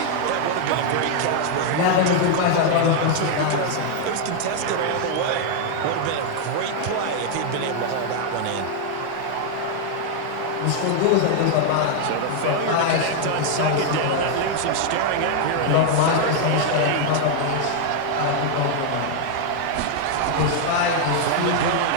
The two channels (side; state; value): both; different; correlation 0.00